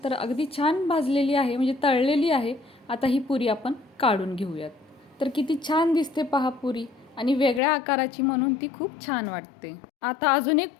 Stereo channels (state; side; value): drops out; right; at 7.6 s